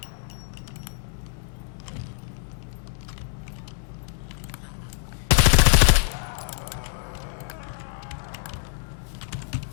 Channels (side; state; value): right; silent; digital silence